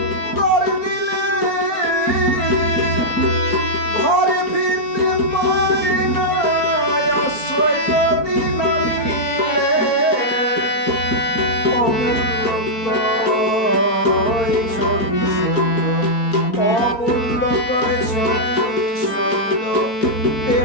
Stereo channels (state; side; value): late; right; 4.4 ms